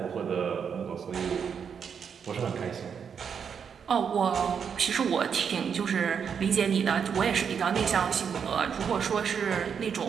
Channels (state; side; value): quieter; left; 7.0 dB